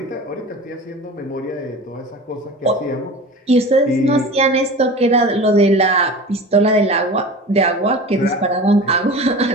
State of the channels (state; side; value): normal; both; correlation 0.35